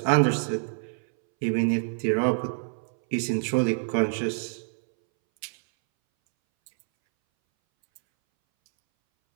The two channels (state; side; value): silent; left; 61 dB below the other